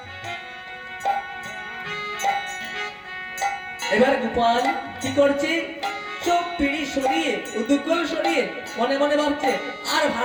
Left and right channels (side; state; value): both; identical; correlation 1.00